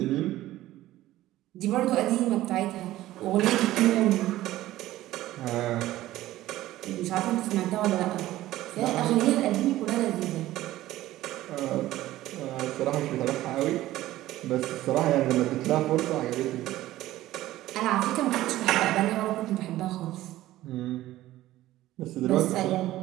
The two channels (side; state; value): left; quieter; 15.4 dB